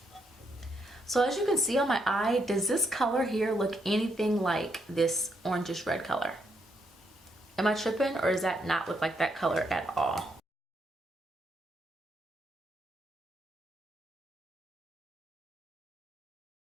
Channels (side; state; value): both; normal; correlation 0.77